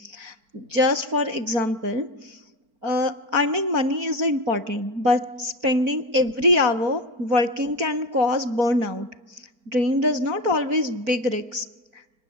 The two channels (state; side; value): late; left; 4.4 ms